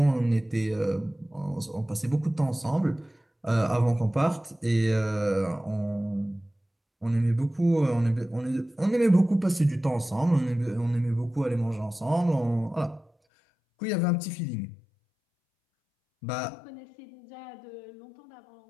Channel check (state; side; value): drops out; right; at 13.1 s